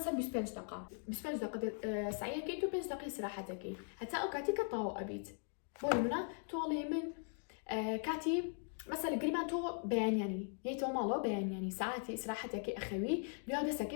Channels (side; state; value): right; silent; 51 dB below the other